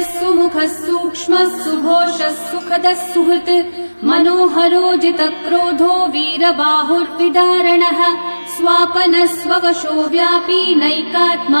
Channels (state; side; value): inverted; both; correlation -1.00